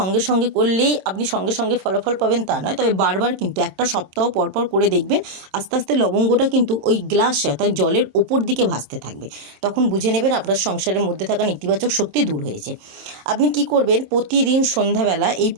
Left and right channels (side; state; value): left; late; 26 ms